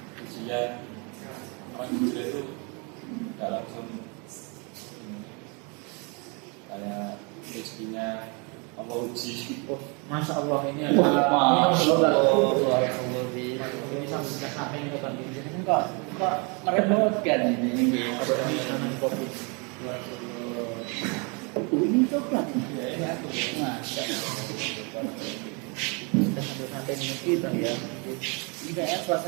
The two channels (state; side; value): quieter; left; 32.7 dB